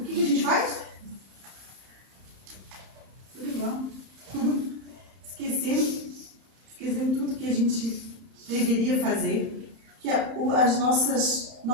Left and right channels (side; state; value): left; late; 31 ms